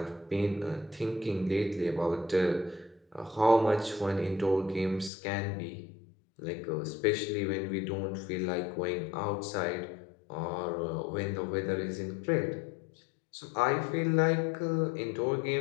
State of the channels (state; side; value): drops out; right; at 5.1 s